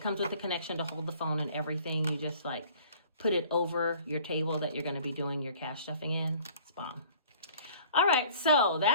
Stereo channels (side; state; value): both; inverted; correlation -0.51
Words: comes with the connection to hold the phone and everything. You just like put it over your table that you're going to be doing your cash stuffing in. It's bomb. All right, so